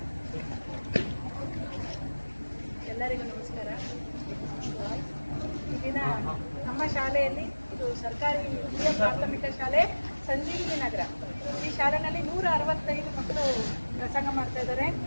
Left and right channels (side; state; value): both; inverted; correlation -1.00